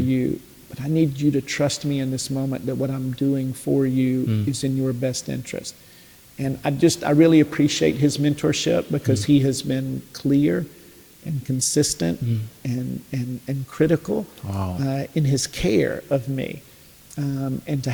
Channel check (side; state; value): both; identical; correlation 1.00